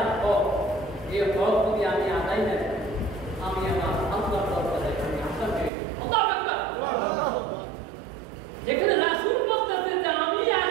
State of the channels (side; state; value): left; drops out; at 5.7 s